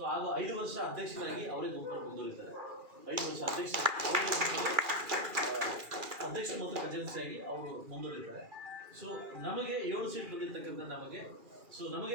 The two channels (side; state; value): left; late; 2.4 ms